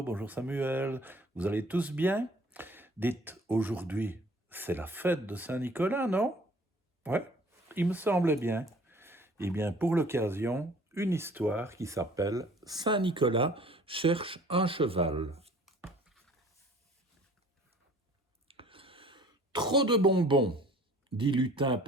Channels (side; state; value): both; normal; correlation 0.52